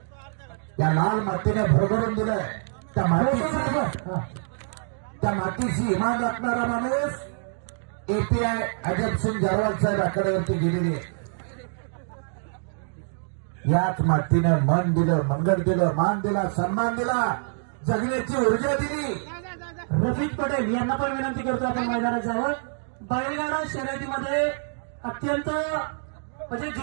या लाल मातीने भरभरून दिलंय. त्या मातीशी इमान राखणारा माणूस एपीआय अजब सिंग जारवाल साहेब आकड्यावरती गेलेले. याच मातीनं मन दिलं, मंगळ दिलं, मान दिला, सन्मान दिला, जगण्याची ऊर्जा दिली. रफिक पटेल यांना पण विनंती करतो आपण मैदानात जावं. बैलगाडा शर्यतीमध्ये अत्यंत म्हणजे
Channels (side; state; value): left; silent; digital silence